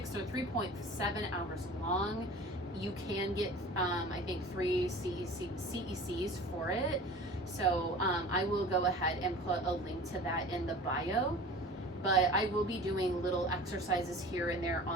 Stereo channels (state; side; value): normal; both; correlation 0.40